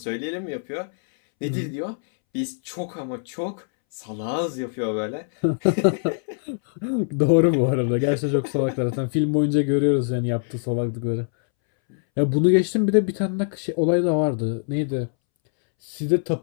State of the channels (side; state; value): right; silent; 63 dB below the other